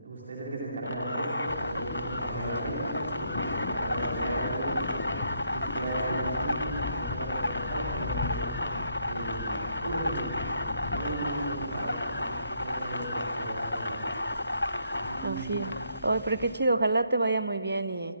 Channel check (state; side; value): inverted; both; correlation -0.73